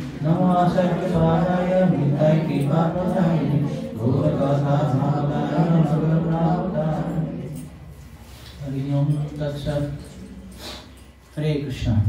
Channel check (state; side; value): identical; both; correlation 1.00